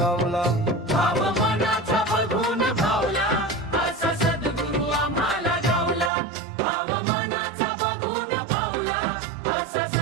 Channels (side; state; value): left; drops out; at 6.1 s